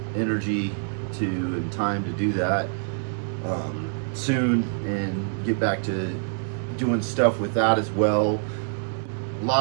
energy and time to do that soon and get back to doing stuff with that as well. A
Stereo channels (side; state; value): left; silent; digital silence